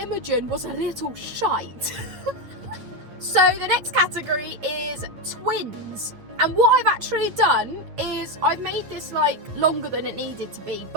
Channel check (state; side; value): late; left; 9.0 ms